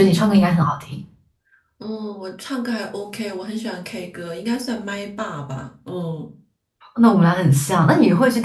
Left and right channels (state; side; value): identical; both; correlation 1.00